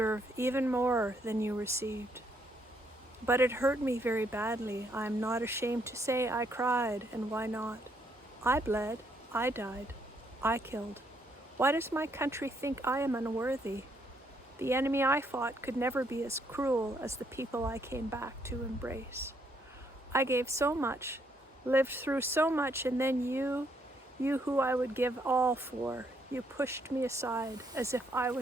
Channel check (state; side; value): normal; both; correlation 0.72